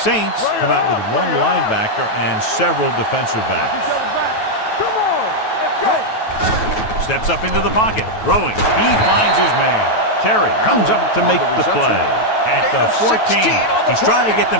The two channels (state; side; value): late; right; 9.2 ms